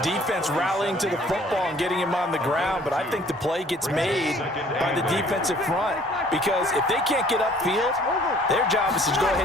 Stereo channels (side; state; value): both; normal; correlation 0.56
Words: rallying to the football and getting him on the ground, but I think the play gets made by the defensive front because if they can't get upfield, their job is to go